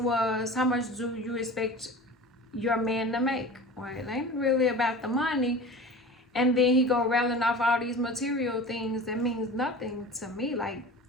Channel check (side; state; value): both; normal; correlation 0.36